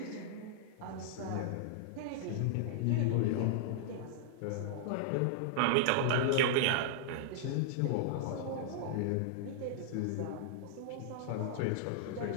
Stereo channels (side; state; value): both; different; correlation -0.01